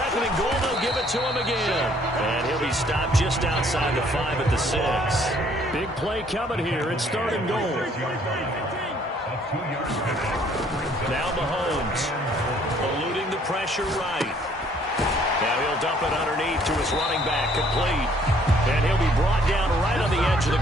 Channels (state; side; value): normal; both; correlation 0.62